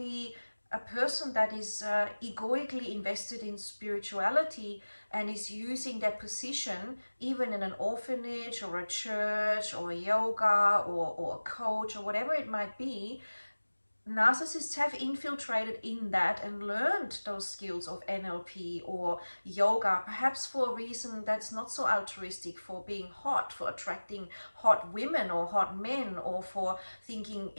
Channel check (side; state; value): both; inverted; correlation -1.00